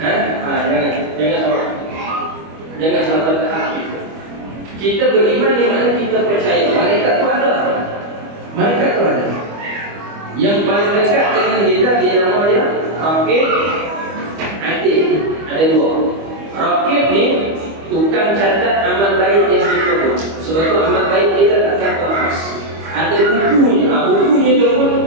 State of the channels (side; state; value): left; late; 25 ms